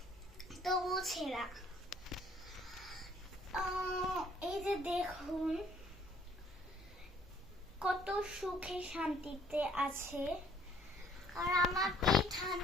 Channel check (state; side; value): normal; both; correlation 0.59